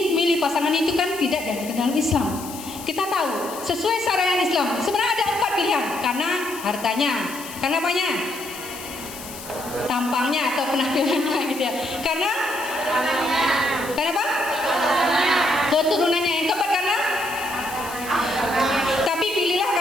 pasangan itu kan tidak dari dalam Islam. Kita tahu sesuai syariat Islam sebenarnya ada 4 pilihan, karena hartanya, karena apanya? Tampangnya atau penampilannya gitu ya. Karena apa? Keturunannya. Yang keempat karena? Tapi pilihlah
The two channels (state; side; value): noise; left; hiss, 13 dB below the sound